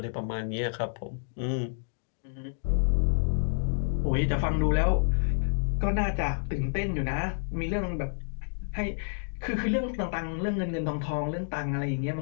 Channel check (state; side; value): silent; right; digital silence